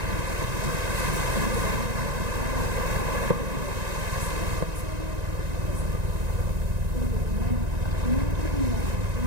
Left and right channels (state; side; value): late; left; 1.9 ms